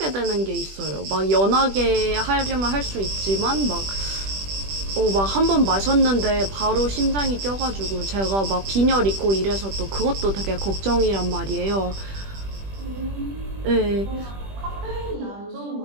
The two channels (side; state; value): left; late; 20 ms